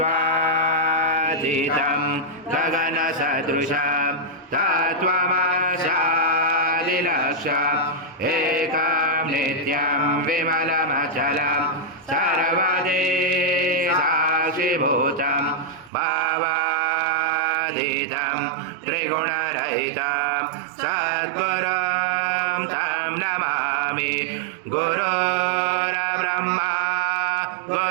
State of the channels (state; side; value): drops out; left; at 15.9 s